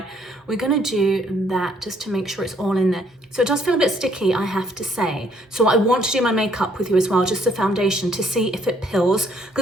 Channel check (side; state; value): both; normal; correlation 0.66